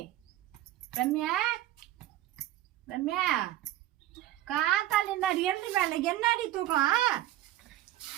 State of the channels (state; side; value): quieter; left; 14.1 dB